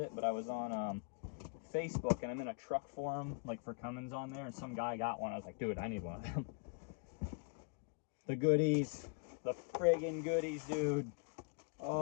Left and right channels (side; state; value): right; quieter; 33.7 dB